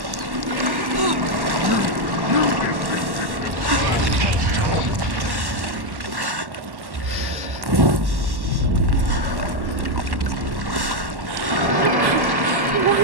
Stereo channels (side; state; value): left; late; 1.1 ms